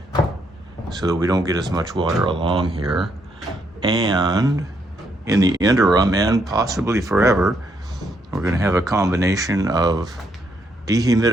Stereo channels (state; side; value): normal; both; correlation 0.75